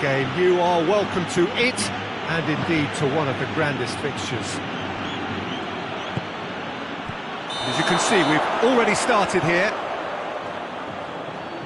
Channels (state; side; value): identical; both; correlation 1.00